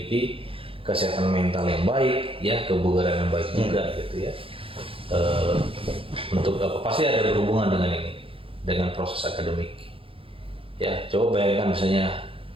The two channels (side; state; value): left; late; 0.27 ms